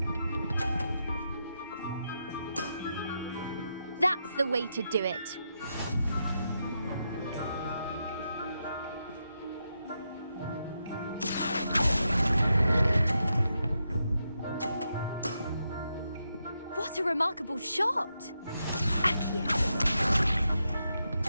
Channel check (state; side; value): inverted; both; correlation -0.84